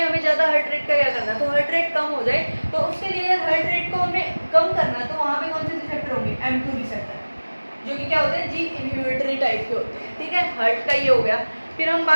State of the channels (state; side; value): inverted; both; correlation -1.00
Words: हमें ज़्यादा हार्ट रेट का क्या करना, तो हार्ट रेट कम हो जाए, तो उसके लिए अगर हार्ट रेट को हमें कम करना तो वहाँ पे कौन से रिसेप्टर होंगे, M2 रिसेप्टर, जो कि क्या होते हैं, जी इनहिबिटरी टाइप के होते हैं, ठीक है। हार्ट का ये हो गया। फिर हम